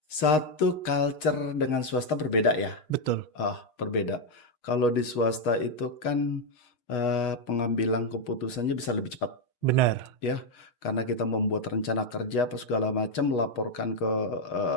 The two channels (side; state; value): right; late; 6.4 ms